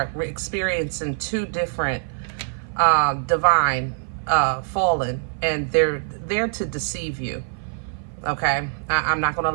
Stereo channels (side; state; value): left; silent; 55 dB below the other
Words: experiencing two different divine fallen, and they're there to deceive you. Okay, I'm not gonna